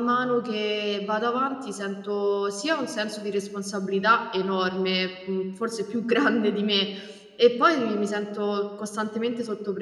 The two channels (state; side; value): identical; both; correlation 1.00